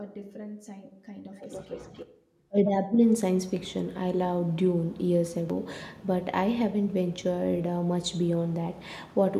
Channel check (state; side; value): identical; both; correlation 1.00